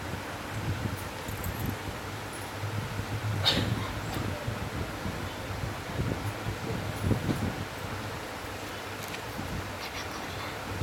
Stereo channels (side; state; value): both; identical; correlation 1.00